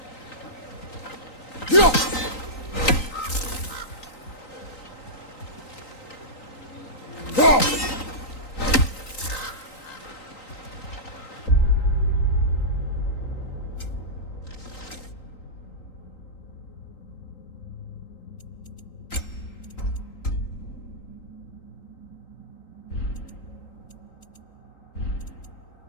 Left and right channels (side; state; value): right; late; 3.9 ms